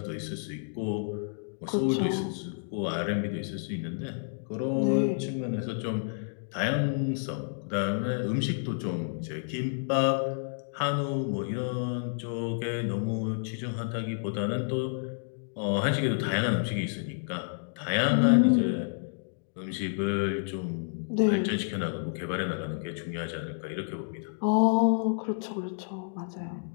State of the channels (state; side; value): silent; right; digital silence